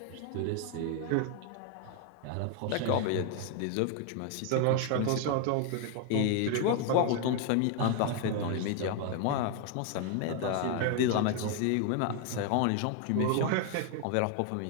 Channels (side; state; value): both; different; correlation 0.00